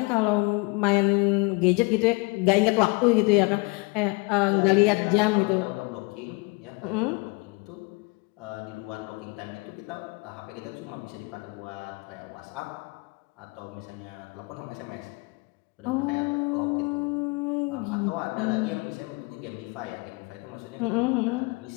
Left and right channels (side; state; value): right; quieter; 27.6 dB